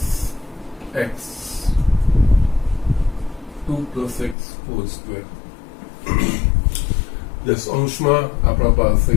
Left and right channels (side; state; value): right; drops out; at 4.4 s